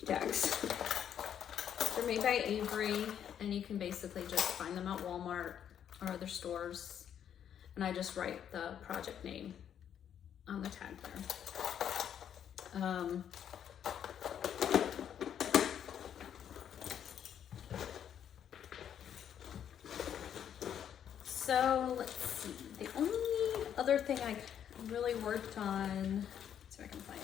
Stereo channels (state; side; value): quieter; right; 9.2 dB